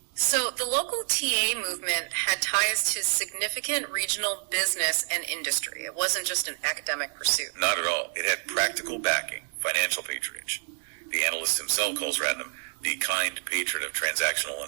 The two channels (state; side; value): silent; left; 59 dB below the other